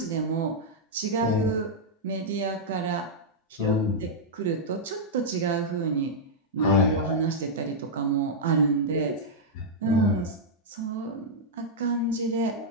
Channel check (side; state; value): both; normal; correlation -0.07